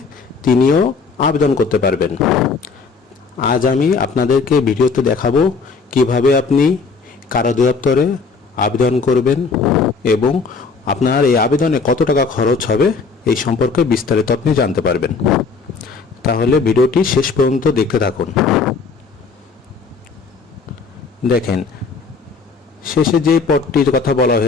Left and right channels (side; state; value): right; quieter; 4.7 dB